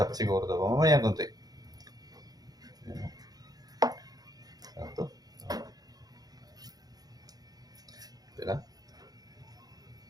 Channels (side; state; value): left; late; 0.19 ms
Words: siguro to. Mamaya konti. Ito. Ito lang.